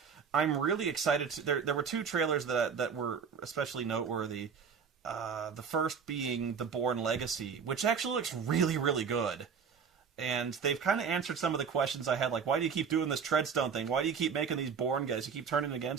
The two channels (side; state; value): left; quieter; 6.4 dB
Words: I'm really excited. There were two trailers that were especially noteworthy. The first being The Bourne Legacy, which actually looks really, really good. And they've kind of answered some of the questions I had, like, why do you keep doing this Treadstone thing? Why do you keep making these Bourne guys? You keep turning